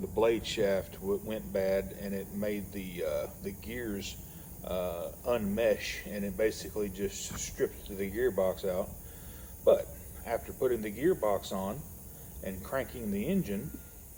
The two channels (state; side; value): identical; both; correlation 1.00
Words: blade shaft went bad, and it made the gears unmesh, and it basically just stripped the gearbox out. But after putting the gearbox on and cranking the engine,